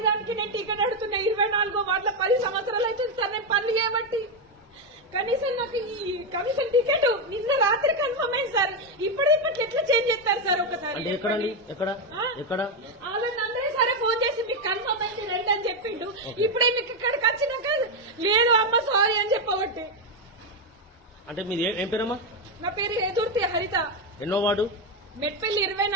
దానికి నేను టికెట్ అడుగుతున్నా. 24 వార్డుల 10 సంవత్సరాలు అవుతుంది సార్ నేను పనులు చేయబట్టి. కనీసం నాకు ఈ కమిషన్ టికెట్ నిన్న రాత్రి కన్ఫర్మ్ అయింది సార్. ఇప్పటికి ఎట్లా చేంజ్ చేస్తారు సార్? ఒకసారి అందరూ సరే ఫోన్ చేసి మీకు కన్ఫర్మ్ అయింది రండి అని చెప్పిండు. ఇప్పుడే మీకు ఇక్కడికి వచ్చినాక లేదు అమ్మ సారీ అని చెప్పబట్టి. అంటే మీరు ఏం పేరమ్మా? నా పేరు ఎదుర్తి హరిత. ఎన్నో వార్డు? మెట్పల్లి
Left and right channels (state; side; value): normal; both; correlation 0.06